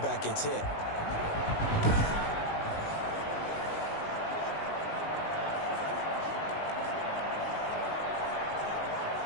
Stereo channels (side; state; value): right; late; 19 ms